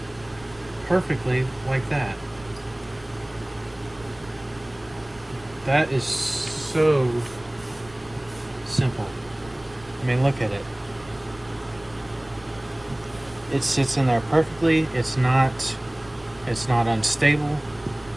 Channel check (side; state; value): right; noise; rumble, 23 dB below the sound